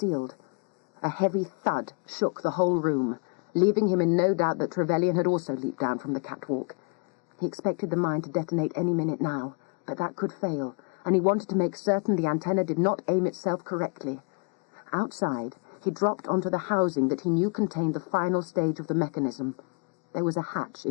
A heavy thud shook the whole room, leaving him in no doubt that Trevelyan had also leaped down from the catwalk. He expected the mine to detonate any minute now, but that could fail, and he wanted to make certain the antenna did not aim itself correctly. Outside, he dropped onto the housing that he knew contained the final stage of the mechanism. There was a hatch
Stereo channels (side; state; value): right; quieter; 34.3 dB